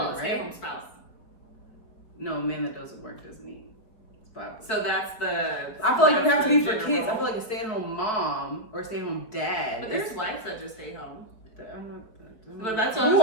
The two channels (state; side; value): late; right; 4.8 ms